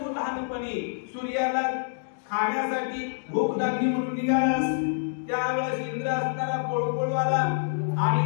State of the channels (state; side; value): silent; right; digital silence